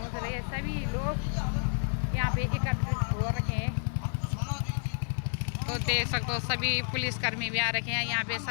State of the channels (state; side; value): silent; right; digital silence